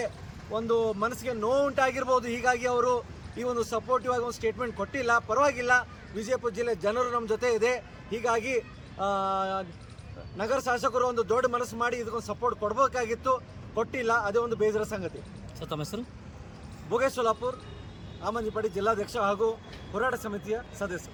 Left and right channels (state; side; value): identical; both; correlation 1.00